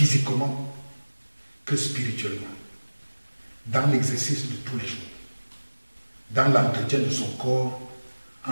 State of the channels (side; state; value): both; inverted; correlation -1.00